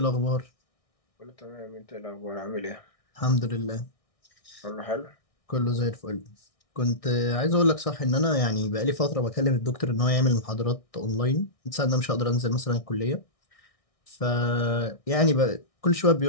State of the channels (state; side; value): late; right; 1.6 ms